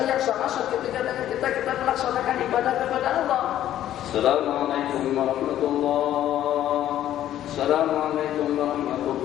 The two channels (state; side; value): quieter; right; 12.1 dB